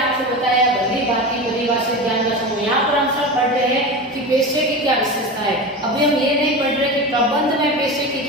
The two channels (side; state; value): both; normal; correlation 0.26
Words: बताया भली भांति परिभाषित ज्ञान का समूह। यहाँ पर हम सब पढ़ रहे हैं कि पेशे की क्या विशेषता है। अभी हम ये नहीं पढ़ रहे कि प्रबंध में पेशे की